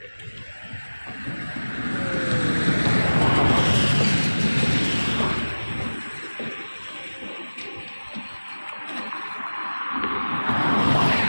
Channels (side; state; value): both; inverted; correlation -1.00